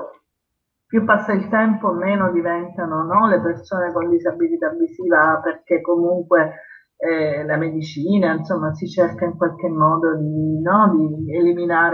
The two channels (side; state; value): both; identical; correlation 1.00